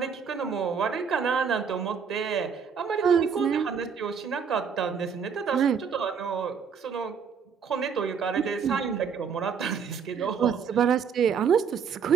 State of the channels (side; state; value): left; quieter; 6.6 dB